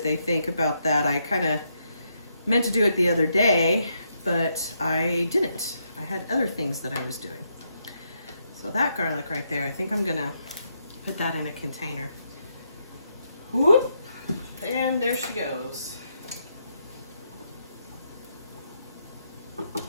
they think about that. I kind of meant to do it the other day, but I didn't. I had other things that I was doing. So that garlic right there, I think I'm gonna put that in a container. Whoop. And there she goes.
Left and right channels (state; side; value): inverted; both; correlation -0.78